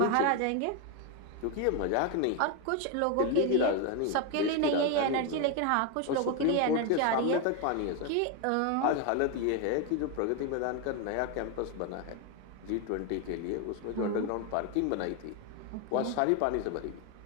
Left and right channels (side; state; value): both; different; correlation 0.02